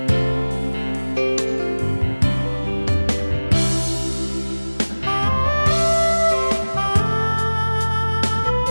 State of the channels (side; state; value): both; inverted; correlation -1.00